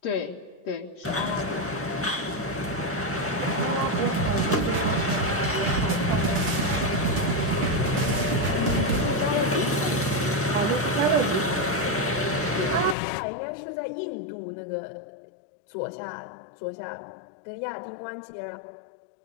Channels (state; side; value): drops out; right; at 13.0 s